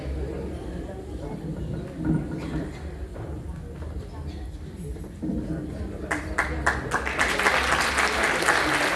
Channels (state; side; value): identical; both; correlation 1.00